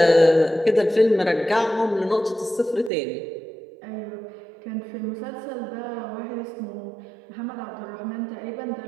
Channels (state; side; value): drops out; left; at 2.9 s